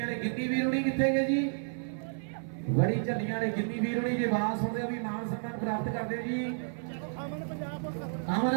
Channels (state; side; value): silent; left; 57 dB below the other